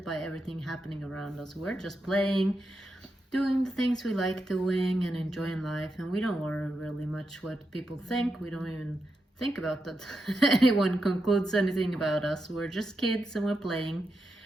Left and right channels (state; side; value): normal; both; correlation 0.86